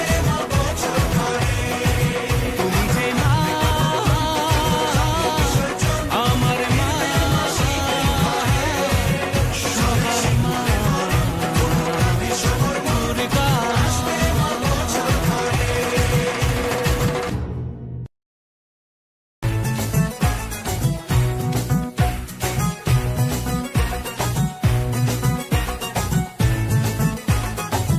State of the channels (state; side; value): identical; both; correlation 1.00